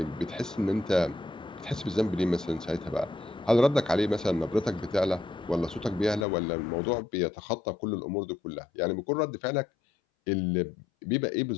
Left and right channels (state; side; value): drops out; right; at 6.2 s